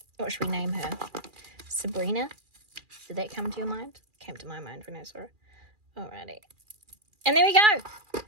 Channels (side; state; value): left; late; 2.4 ms